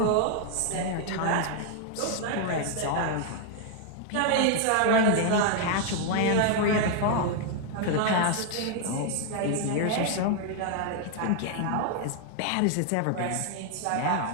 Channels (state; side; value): different; both; correlation 0.00